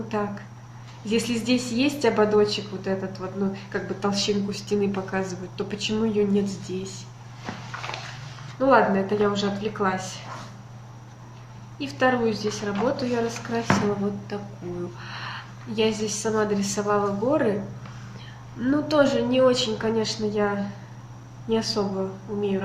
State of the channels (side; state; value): both; identical; correlation 1.00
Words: так? Если здесь есть ободочек вот этот вот, ну, как бы толщинку стены показывает, то почему ее нет здесь? Ну ладно, это я уже отвлеклась. И вторую здесь работу я раскрасила вот такую. Я здесь сама дорисовала горы. Ну, тоже не очень, конечно, я не особо умею